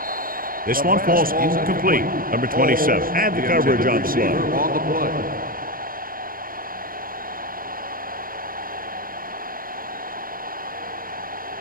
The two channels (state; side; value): late; left; 0.41 ms